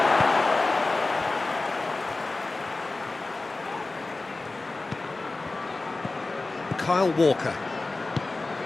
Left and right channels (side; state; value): right; quieter; 3.3 dB